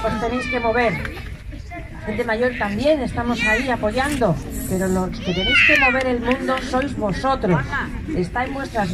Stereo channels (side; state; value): both; identical; correlation 1.00